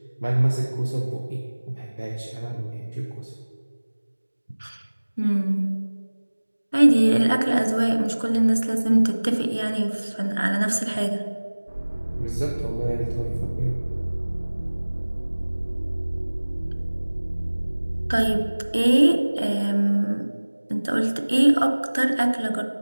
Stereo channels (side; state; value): both; inverted; correlation -1.00